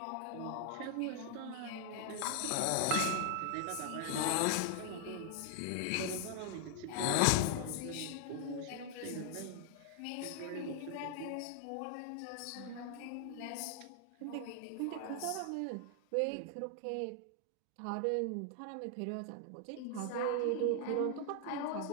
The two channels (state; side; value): different; both; correlation 0.00